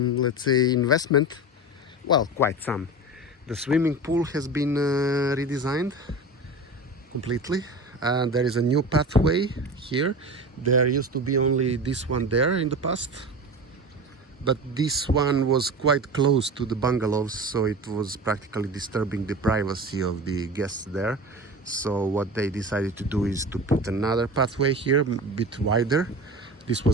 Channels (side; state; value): both; normal; correlation 0.30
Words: let's say investment. Well, quite some. The swimming pool has been redesigned completely, and there is a new pathway here. There used to be only this one there in the past, but this one was quite close to the bungalows, so it was practically disturbing the privacy of the guests there. So what they decided to do is to put another pathway here, a bit wider. This